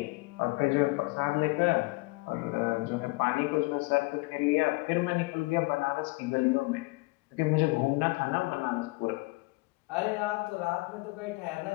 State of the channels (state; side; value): quieter; right; 25.3 dB